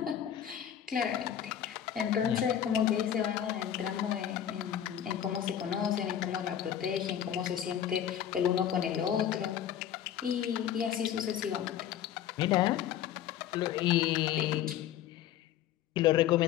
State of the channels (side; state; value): right; quieter; 10.3 dB